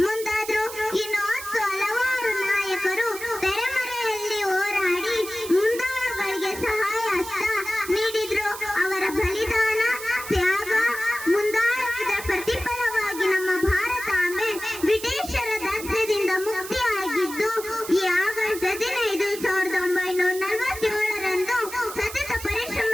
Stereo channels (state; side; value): noise; right; hiss, 11 dB below the sound